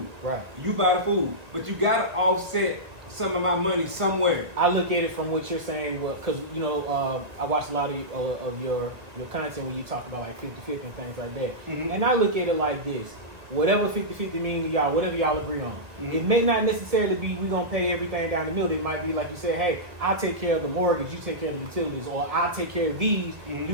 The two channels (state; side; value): late; left; 1.4 ms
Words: Right. You buy the food, but you got to offset some of my money somewhere. I look at it from what you're saying, because I watch a lot of your content when you talk about like 50-50 and things like that. And I look at it like this: whatever 50-50 means to y'all, whatever y'all agree on. It may not necessarily be we're gonna pay everything down the middle. It might be like you said, hey, I'll take care of the mortgage, you take care of the utilities, or I'll take care of these, you